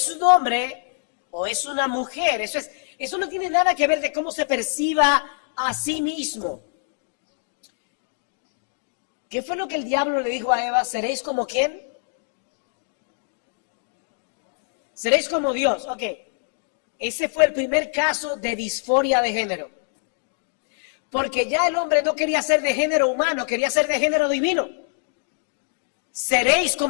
un hombre o es una mujer. Eso no tiene nada que ver de cómo se perciba a sí mismo. ¿Qué fue lo que el diablo le dijo a Eva? ¿Seréis como quién? Seréis como Dios. Ok. Ese fue el primer caso de disforia de género. Porque ya el hombre no quería ser de género humano, quería ser de género divino. Seréis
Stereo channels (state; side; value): silent; right; digital silence